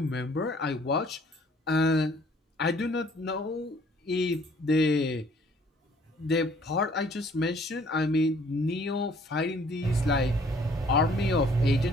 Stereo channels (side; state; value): both; normal; correlation 0.58